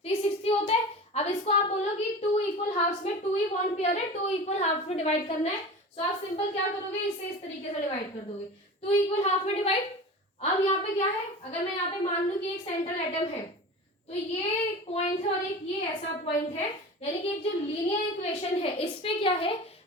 360 होता है। अब इसको आप बोलो कि 2 इक्वल हाफ्स में 2 ही बॉन्ड पेयर है, 2 इक्वल हाफ में डिवाइड करना है। सो आप सिंपल क्या करोगे, इसे इस तरीके से डिवाइड कर दोगे, 2 इक्वल हाफ में डिवाइड। अब यहाँ पे क्या है, अगर मैं यहाँ पे मान लूं कि एक सेंट्रल एटम है, तो ये पॉइंट है और एक ये ऐसा पॉइंट है, यानी कि एक जो लीनियर इक्वेशन है इस पे क्या है,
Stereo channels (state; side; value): normal; both; correlation 0.34